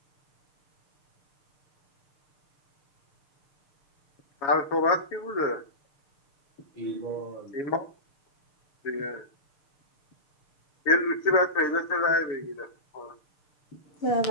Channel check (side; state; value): right; late; 6.6 ms